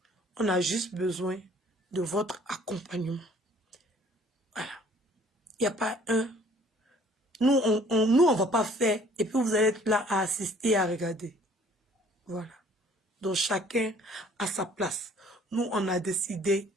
On a juste besoin de votre accompagnement. Voilà. Il n'y a pas un. Nous, on va pas faire. Et puis, vous allez être là à assister et à regarder. Voilà. Donc, chacun à sa place. Nous, on a décidé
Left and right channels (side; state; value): both; normal; correlation 0.56